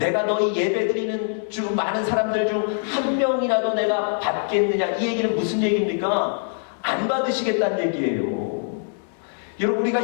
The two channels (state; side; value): silent; right; digital silence